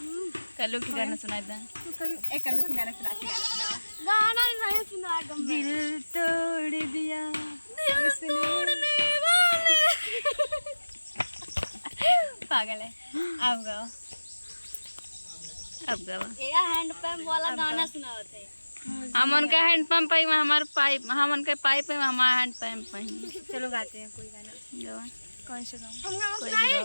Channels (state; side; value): inverted; both; correlation -1.00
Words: कल्लू की गाना सुनाए था। गाना नहीं सुना दिल तोड़ दिया पागल है। अब गाओ, अब गावा। ये हैंड पंप वाला गाना सुना थे। हम उनका हैंड पंप पे, हमारे पाइप, हम उनके पाइप पे, हमारा हैंड पंप पे। चलो गाते हैं कोई गाना। गावा। कौन सा गाऊं? हम गाना कोई भी सुनाए।